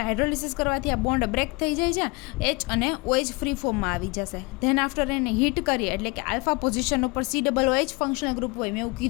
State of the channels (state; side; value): quieter; right; 27.0 dB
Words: હાઇડ્રોલિસિસ કરવાથી આ બોન્ડ બ્રેક થઈ જાય છે, H અને OH ફ્રી ફોર્મમાં આવી જશે. ધેન આફ્ટર એને હીટ કરીએ એટલે કે આલ્ફા પોઝિશન ઉપર COOH ફંક્શનલ ગ્રુપ હોય. મેં એવું